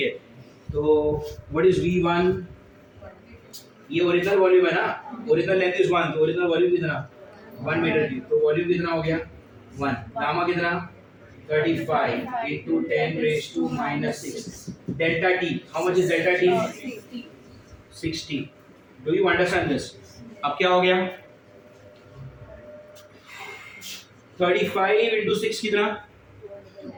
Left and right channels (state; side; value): identical; both; correlation 1.00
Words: तो व्हाट इज V1? ये ओरिजिनल वॉल्यूम है ना. ओरिजिनल लेंथ इज 1 तो ओरिजिनल वॉल्यूम कितना? 1 मीटर क्यूब. तो वॉल्यूम कितना हो गया? 1. गामा कितना? 35 into 10 raised to -6. Delta T. How much is delta T? 60. Do you understand this? अब क्या हो गया? 35 into 6 कितना?